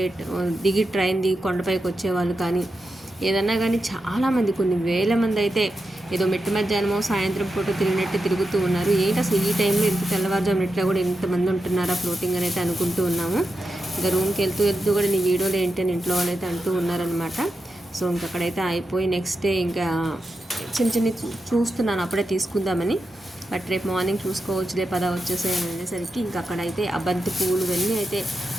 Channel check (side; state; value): both; normal; correlation 0.89